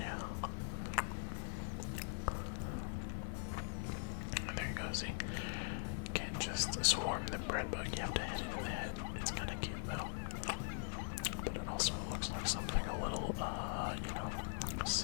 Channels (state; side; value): silent; right; digital silence